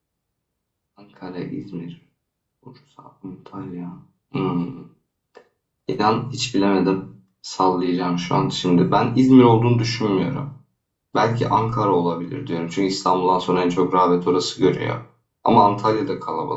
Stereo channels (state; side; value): identical; both; correlation 1.00